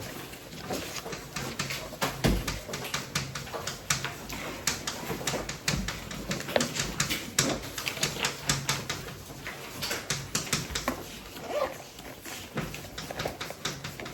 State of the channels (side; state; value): both; identical; correlation 1.00